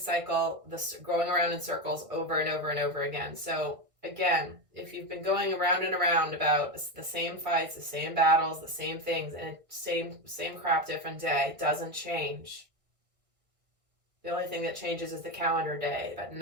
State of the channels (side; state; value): left; late; 1.5 ms